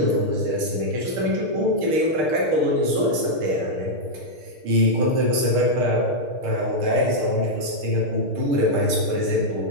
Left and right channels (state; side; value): late; left; 6.6 ms